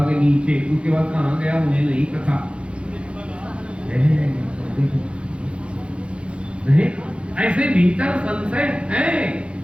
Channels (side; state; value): left; late; 0.058 ms